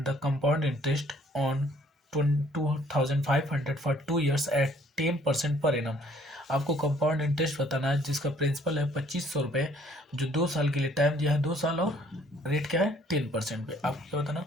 the compound interest on 2500 for 2 years at 10% per annum. आपको कंपाउंड इंटरेस्ट बताना है जिसका प्रिंसिपल है 2500 रुपये, जो 2 साल के लिए टाइम दिया है 2 साल, और रेट क्या है 10% पे। आपको क्या बताना,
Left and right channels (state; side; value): normal; both; correlation 0.61